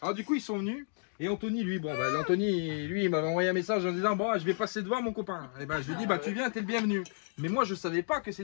Alors du coup ils sont venus. Et Anthony, lui, bon, bah, Anthony, lui, il m'avait envoyé un message en disant bon, je vais passer devant mon copain. Et ben, je lui ai dit bah, tu viens, t'es le bienvenu. Mais moi, je savais pas que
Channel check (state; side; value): silent; right; 57 dB below the other